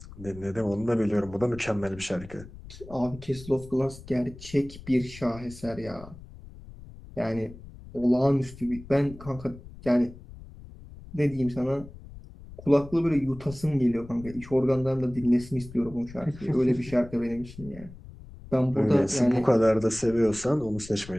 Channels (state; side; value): noise; left; rumble, 17 dB below the sound